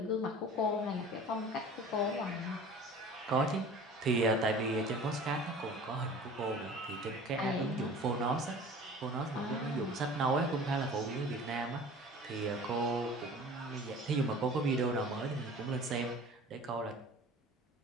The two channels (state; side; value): normal; both; correlation 0.42